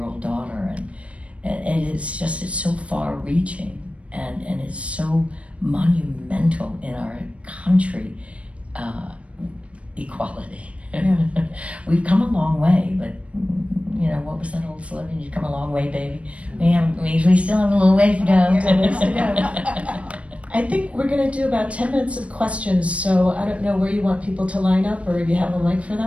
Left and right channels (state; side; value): late; left; 0.063 ms